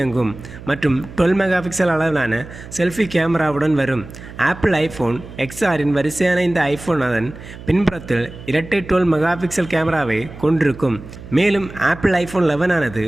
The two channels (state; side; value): noise; right; hum, 15 dB below the sound